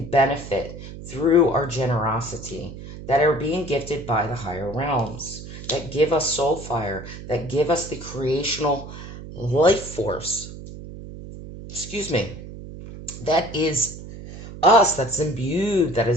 benefit through our generosity, that are being gifted by the higher realms, that give us soul fire, that give us the creational life force. Excuse me. That is us, that's imbued, that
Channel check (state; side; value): noise; right; hum, 12 dB below the sound